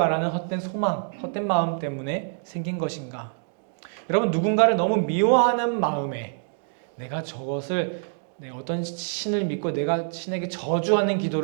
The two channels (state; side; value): silent; left; digital silence